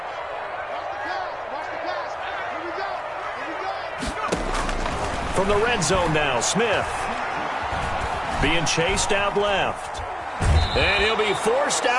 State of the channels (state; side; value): identical; both; correlation 1.00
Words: From the red zone now, Smith. Being chased out left. And he'll be forced